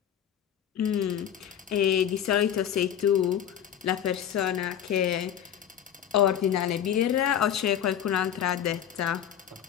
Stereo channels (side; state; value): right; quieter; 9.7 dB